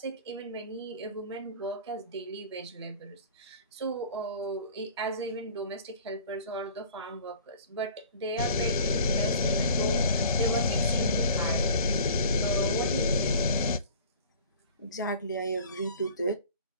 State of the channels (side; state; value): both; inverted; correlation -0.46